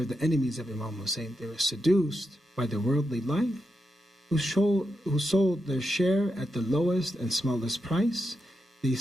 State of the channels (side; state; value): both; normal; correlation 0.86